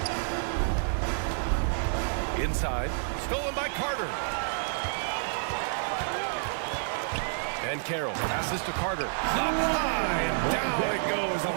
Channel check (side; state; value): left; silent; digital silence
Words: Inside, stolen by Carter. And Carroll passes to Carter. Up high, and down it goes on